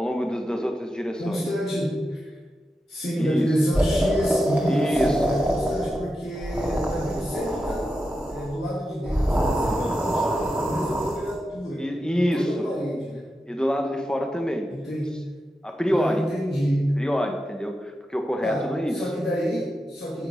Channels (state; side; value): normal; both; correlation 0.89